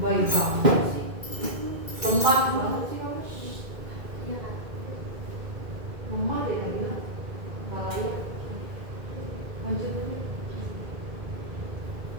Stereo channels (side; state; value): left; late; 2.1 ms